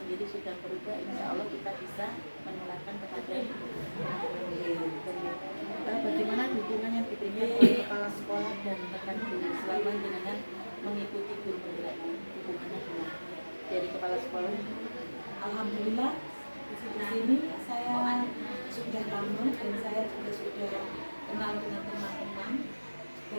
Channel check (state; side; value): inverted; both; correlation -1.00